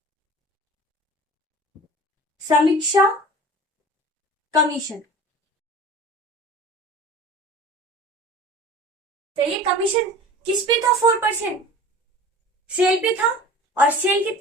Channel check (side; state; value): both; normal; correlation 0.39